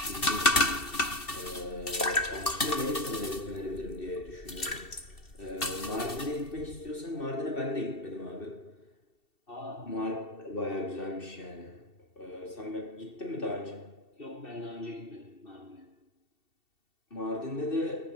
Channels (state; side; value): late; right; 2.7 ms